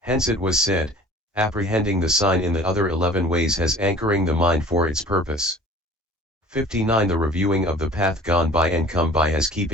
it was said, apprehending the sign in the other 11 ways has anchoring the mind for its purpose. 59. The reviewing of the path gone by and come by has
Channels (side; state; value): both; normal; correlation 0.46